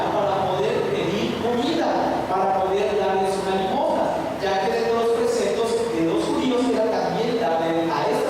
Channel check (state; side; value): identical; both; correlation 1.00